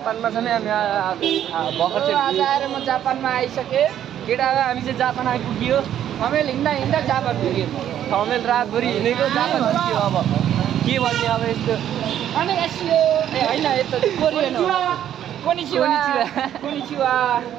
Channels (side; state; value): left; quieter; 10.7 dB